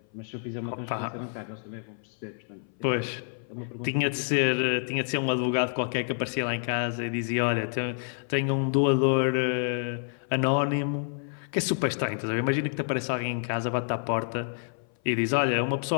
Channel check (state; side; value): silent; right; 58 dB below the other